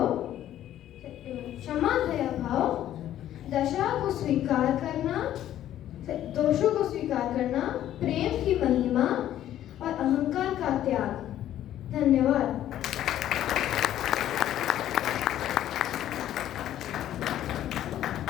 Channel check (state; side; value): quieter; right; 12.1 dB